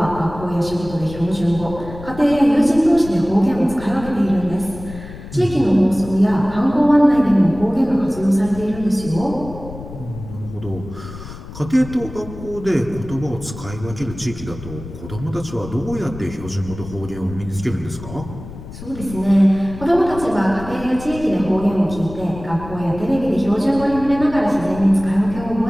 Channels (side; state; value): left; noise; rumble, 13 dB below the sound